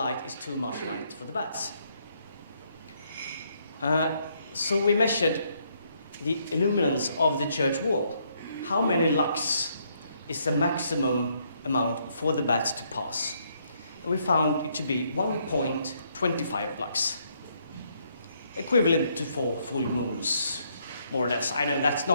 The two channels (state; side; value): inverted; both; correlation -0.72